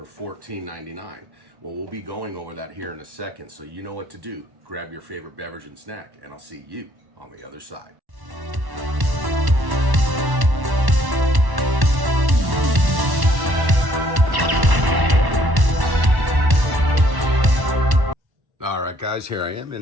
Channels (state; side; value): late; left; 1.1 ms